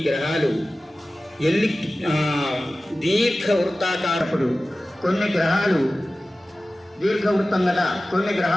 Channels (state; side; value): normal; both; correlation 0.96